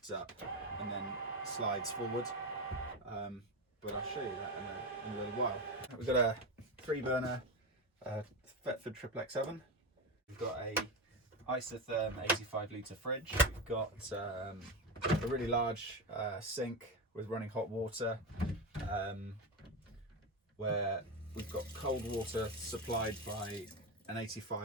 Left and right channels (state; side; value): normal; both; correlation 0.16